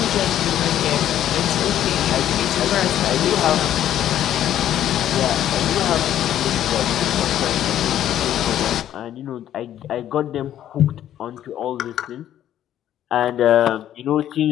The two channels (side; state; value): right; quieter; 11.4 dB